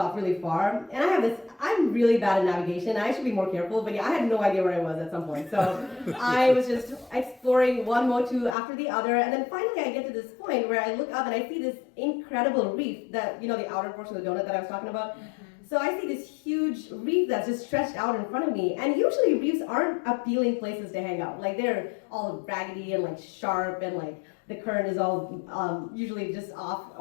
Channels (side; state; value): right; drops out; at 8.6 s